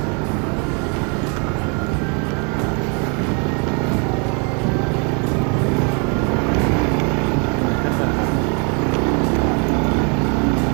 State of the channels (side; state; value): left; quieter; 35.5 dB